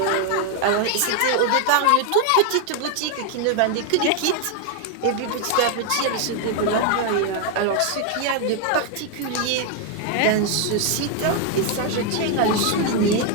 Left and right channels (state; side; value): different; both; correlation 0.00